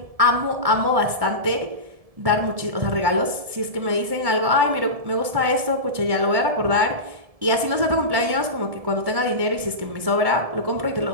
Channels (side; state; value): left; late; 1.7 ms